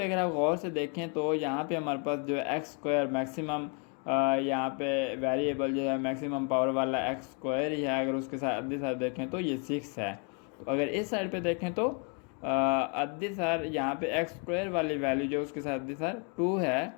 अगर आप गौर से देखें तो यहाँ पे हमारे पास जो एक्स स्क्वायर मैक्सिमम, यहाँ पे वेरिएबल जो है मैक्सिमम पावर वाला एक्स स्क्वायर ही है, अगर उसके साथ अदिश देखें तो ये 6 है। तो अगर इस साइड पे देखें तो अदिश यहाँ पे एक्स स्क्वायर वाली वैल्यू जो उसके साथ अदिश 2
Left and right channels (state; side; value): quieter; right; 37.1 dB